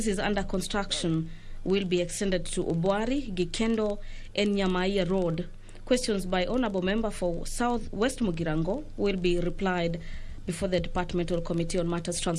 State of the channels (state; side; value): identical; both; correlation 1.00